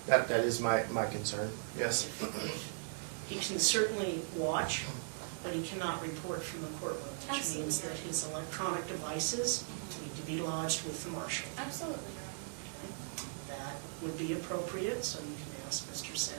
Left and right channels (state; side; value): silent; left; digital silence